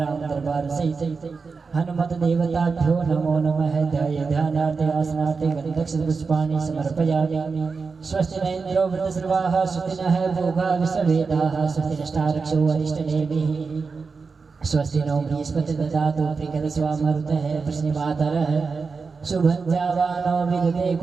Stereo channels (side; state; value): left; quieter; 4.8 dB